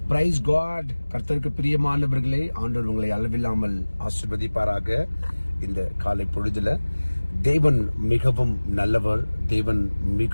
price God. கர்த்தருக்கு பிரியமானவர்களே, ஆண்டவர் உங்களை அளவில்லாமல் ஆசீர்வதிப்பாராக. இந்த காலை பொழுதுல தேவன் மிகவும் நல்லவர், தேவன்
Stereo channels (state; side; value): inverted; both; correlation -1.00